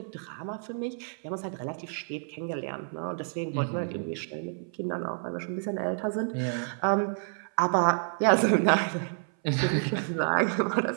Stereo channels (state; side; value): silent; left; 58 dB below the other